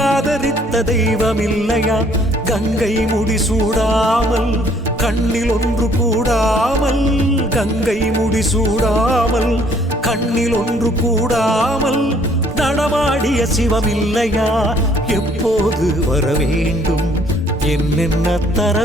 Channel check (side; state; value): both; normal; correlation 0.62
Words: ஆதரித்த தெய்வம் இல்லையா? கங்கை முடிசூடாமல் கண்ணில் ஒன்று கூடாமல், கங்கை முடிசூடாமல் கண்ணில் ஒன்று கூடாமல் நடமாடிய சிவம் இல்லையா? எப்போது வர வேண்டும், என்னென்ன தர